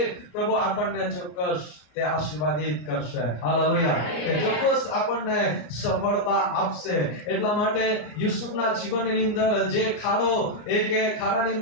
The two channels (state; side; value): late; right; 33 ms